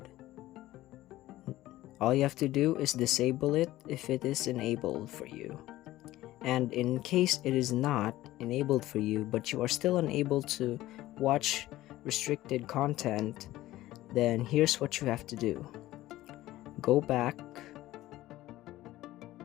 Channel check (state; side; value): quieter; right; 16.0 dB